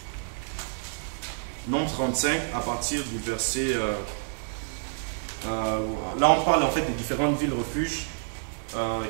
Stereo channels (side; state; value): left; silent; digital silence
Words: Nombre 35, à partir du verset... là, on parle, en fait, des différentes villes refuges